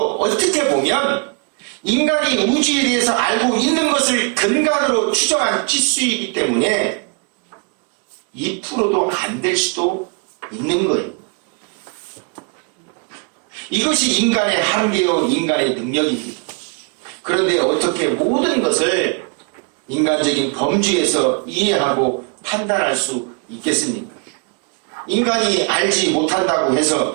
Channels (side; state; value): left; quieter; 36.1 dB